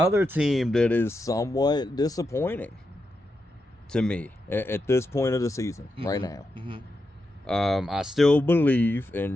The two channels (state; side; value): normal; both; correlation 0.86